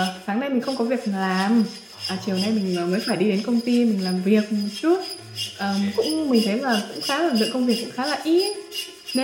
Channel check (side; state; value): both; identical; correlation 1.00